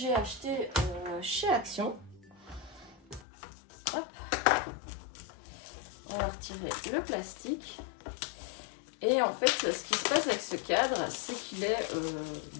acheté chez Action. Hop, on va retirer le plastique. Et en fait ce qui se passe avec ce cadre, c'est qu'il est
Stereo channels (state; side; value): drops out; right; at 3.2 s